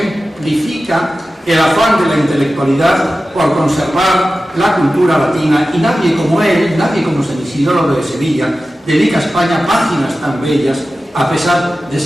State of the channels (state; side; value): normal; both; correlation 0.94